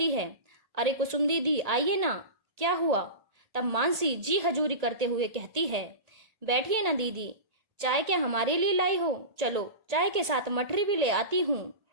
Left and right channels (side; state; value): left; late; 1.8 ms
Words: है। अरे कुसुम दीदी, आइए ना, क्या हुआ। तब मानसी जी हजूरी करते हुए कहती है, बैठिए ना दीदी, चाय क्या हमारे लिए लाई हो। चलो चाय के साथ मठरी भी ले आती हूँ,